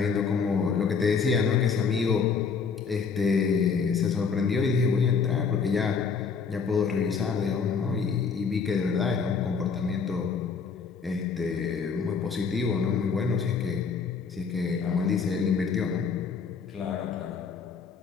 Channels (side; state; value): right; quieter; 5.6 dB